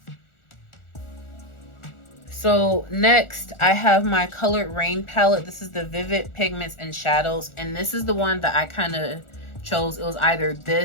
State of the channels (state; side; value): late; right; 1.4 ms